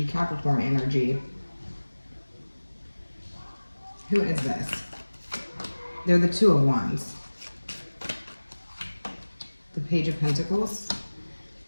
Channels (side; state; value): both; inverted; correlation -1.00